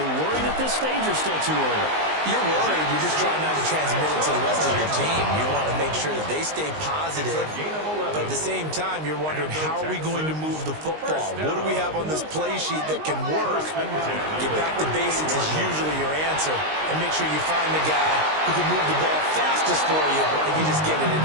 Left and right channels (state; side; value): late; left; 19 ms